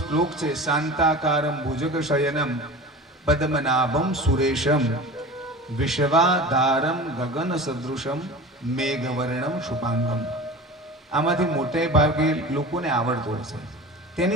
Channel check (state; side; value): normal; both; correlation 0.35